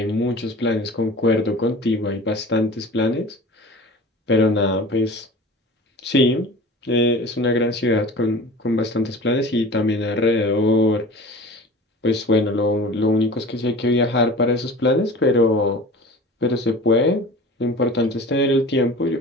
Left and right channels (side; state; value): both; normal; correlation 0.39